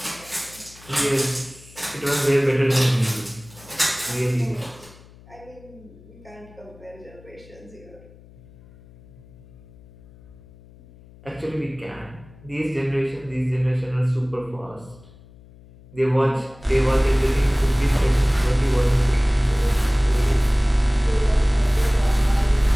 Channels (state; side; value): noise; left; hum, 23 dB below the sound